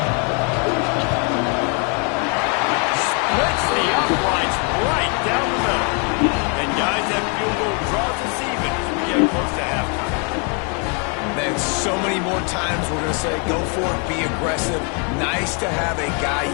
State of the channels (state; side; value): quieter; right; 36.7 dB